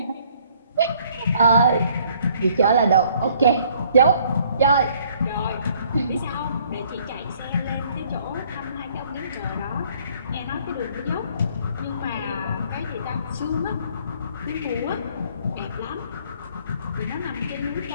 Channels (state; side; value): inverted; both; correlation -0.62